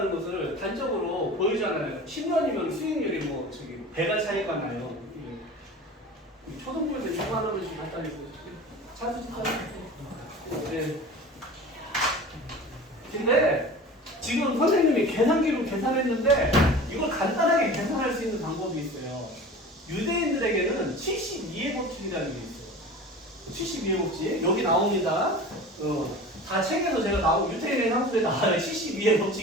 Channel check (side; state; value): both; normal; correlation 0.37